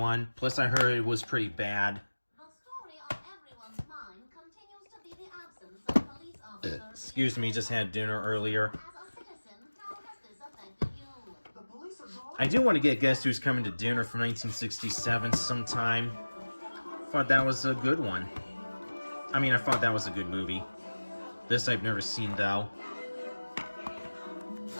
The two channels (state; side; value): inverted; both; correlation -1.00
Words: Plus, I heard it was pretty bad. The story on everyone's mind continues to be the absence of police officers. Excuse me, just had dinner earlier. As a citizen, how has this affected you? The police are gone. I do want to get Guess Who's Coming to Dinner from 1967 sometime. Thought that was a good one. I mean, I thought that was a good movie. This I've never seen, though.